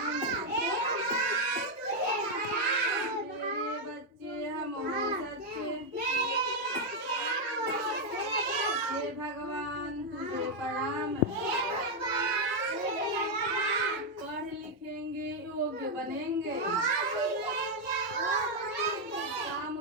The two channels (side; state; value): both; normal; correlation 0.01